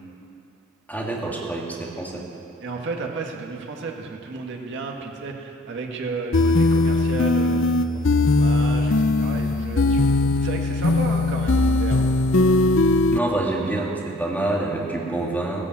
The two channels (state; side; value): normal; both; correlation 0.55